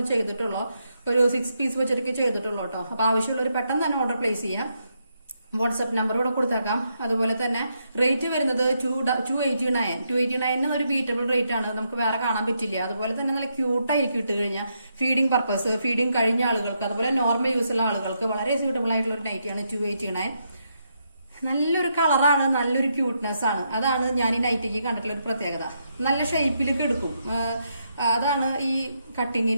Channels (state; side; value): inverted; both; correlation -0.80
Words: ചെയ്തിട്ടുള്ളൂ, ഒരു 6 പീസ് വെച്ചിട്ടൊക്കെ ചെയ്തിട്ടുള്ളൂ കേട്ടോ. അപ്പൊ ആവശ്യമുള്ളവർ പെട്ടെന്ന് തന്നെ ഓർഡർ പ്ലേസ് ചെയ്യാം. വാട്സ്ആപ്പ് നമ്പർ ഇവിടെ കൊടുത്തേക്കാം. അതുപോലെ തന്നെ റേറ്റ് വരുന്നത് 289 ഒരു ബീറ്റബിൾ റേറ്റ് ആണ്, നമുക്ക് വേറെ കാണാൻ പറ്റില്ല. അതുപോലെ തന്നെ നല്ല ക്യൂട്ടായിരിക്കും ഇട്ട് കഴിഞ്ഞാൽ. ഫീഡിംഗ് പർപ്പസ്, ഫീഡിംഗ് കഴിഞ്ഞ ആളുകൾക്ക്, അതുപോലെ നോർമൽ യൂസ് ഉള്ള ആളുകൾക്ക് വളരെ സ്യൂട്ടബിൾ ആയിട്ടുള്ള ഒരു നൈറ്റിയാണ് 289. നല്ലൊരു കളറാണ്, നല്ലൊരു ക്യൂട്ട്നെസ് ആണ്. അതാണ് ഞാൻ ഈ നൈറ്റിക്ക് കണ്ടിട്ടുള്ള ഒരു പ്രത്യേകത. നല്ല ഷേപ്പിലേക്ക് എടുക്കും. അതാണ് ഈ